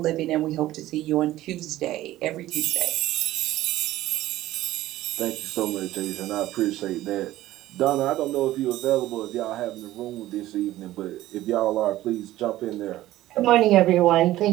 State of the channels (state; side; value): quieter; left; 15.2 dB